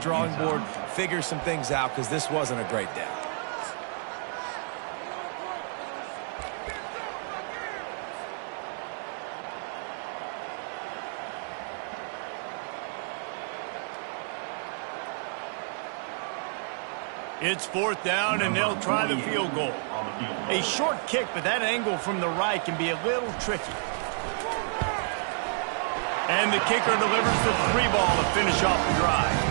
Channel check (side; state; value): left; silent; 58 dB below the other